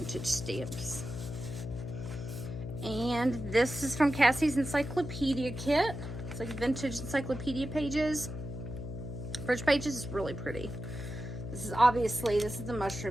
stamps. And this is from Cassie's Encyclopedia Kit. It's like vintage encyclopedia pages. French pages is really pretty. This is the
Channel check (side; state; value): left; noise; hum, 7 dB below the sound